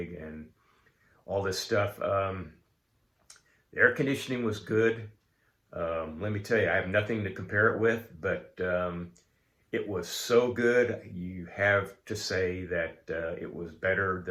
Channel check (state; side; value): identical; both; correlation 1.00